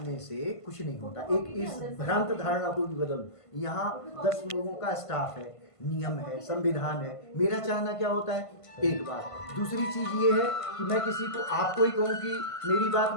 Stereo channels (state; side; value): late; right; 1.5 ms